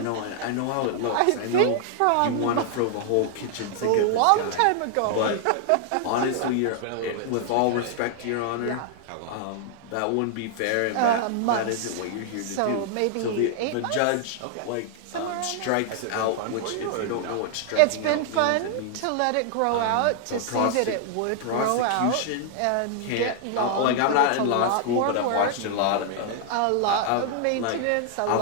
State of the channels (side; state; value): both; different; correlation 0.00